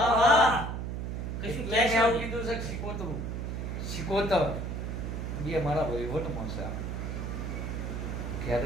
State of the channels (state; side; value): noise; right; hum, 4 dB below the sound